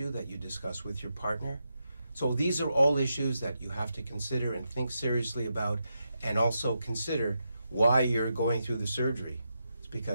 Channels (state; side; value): inverted; both; correlation -0.85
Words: that you discuss with your partner. So these are all issues that you have to consider and think seriously about, and also consider why you're going through the surgery. It's